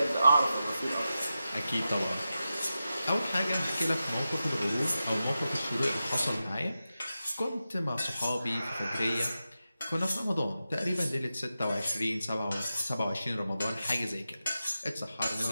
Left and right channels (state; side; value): inverted; both; correlation -0.92